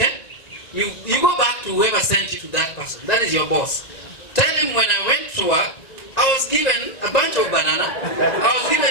You go back to whoever sent you to that person. That is your boss. Tell him, when I went to work, I was given a bunch of banana, I was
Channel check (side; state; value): right; late; 2.0 ms